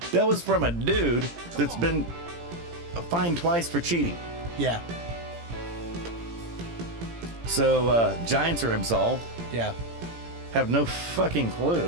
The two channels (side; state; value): left; late; 17 ms